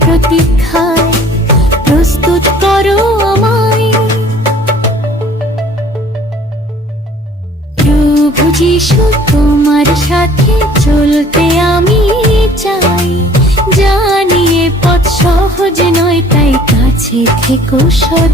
প্রতীক্ষায় প্রস্তুত করো আমায়। প্রভু যিশু তোমার সাথে চলতে আমি চাই। জানি এ পথ সহজ নয়, তাই কাছে থেকো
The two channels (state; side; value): normal; both; correlation 0.53